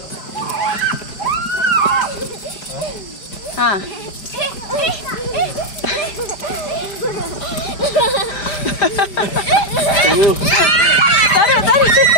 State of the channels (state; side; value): late; right; 5.3 ms